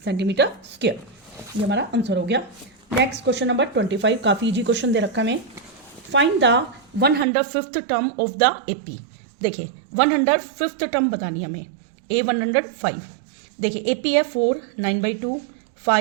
सेंटीमीटर स्क्वायर। ये हमारा आंसर हो गया। नेक्स्ट क्वेश्चन नंबर 25, काफ़ी इजी क्वेश्चन दे रखा है। Find the 105th term of the AP। देखिए 105th टर्म बतानी है हमें, A 105। देखिए AP है 4 9/2,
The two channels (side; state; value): left; drops out; at 7.2 s